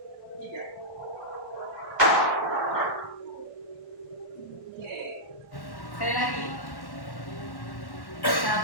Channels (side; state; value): right; late; 1.1 ms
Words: 3. Sekali lagi.